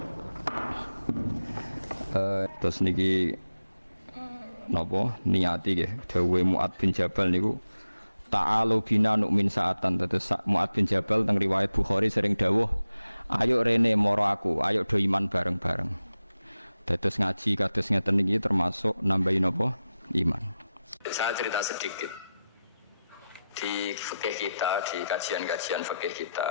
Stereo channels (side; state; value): both; inverted; correlation -0.92